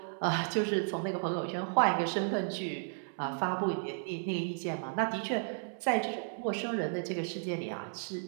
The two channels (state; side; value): silent; left; 55 dB below the other